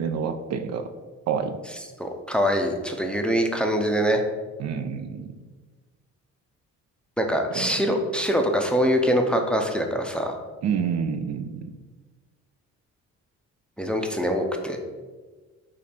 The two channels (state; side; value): normal; both; correlation 0.49